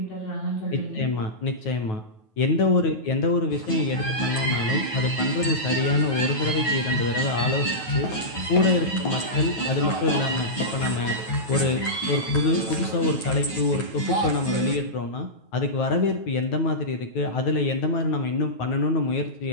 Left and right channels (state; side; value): late; right; 9.3 ms